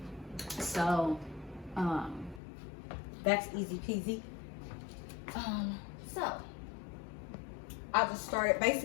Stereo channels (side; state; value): right; drops out; at 2.4 s